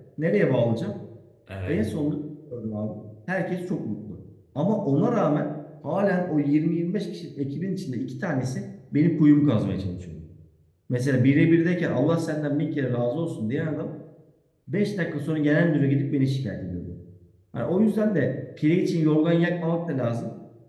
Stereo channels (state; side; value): identical; both; correlation 1.00